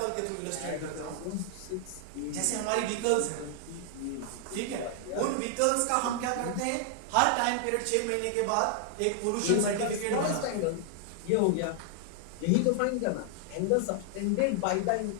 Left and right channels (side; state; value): both; different; correlation 0.00